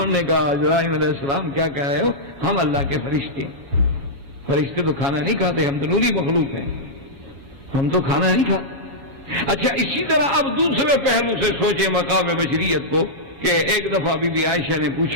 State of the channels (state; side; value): late; left; 7.2 ms